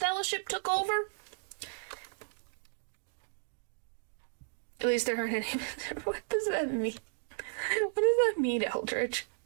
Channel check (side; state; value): left; silent; digital silence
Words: took over? At least there aren't any... What does that mean? What does that mean, Eldritch?